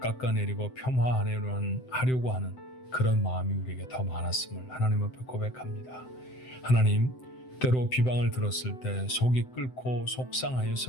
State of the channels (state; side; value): late; right; 7.8 ms